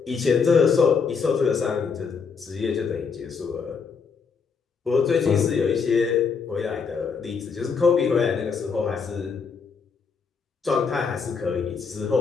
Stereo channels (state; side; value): quieter; right; 5.6 dB